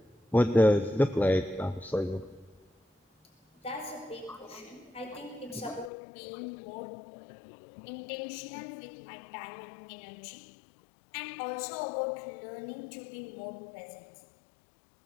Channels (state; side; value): drops out; right; at 5.9 s